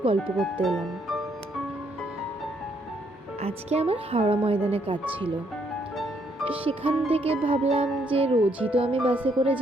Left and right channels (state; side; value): normal; both; correlation 0.72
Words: গল্প করতে এলাম। আজকে আমার হাওড়া ময়দানে কাজ ছিল। সেখান থেকে ভাবলাম যে রোজই তো আমি বাসে করে